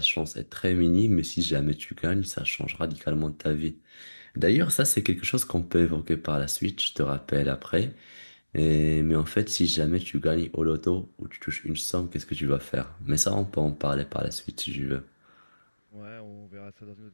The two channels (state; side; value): inverted; both; correlation -1.00